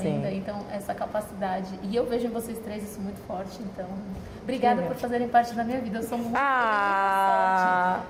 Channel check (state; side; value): identical; both; correlation 1.00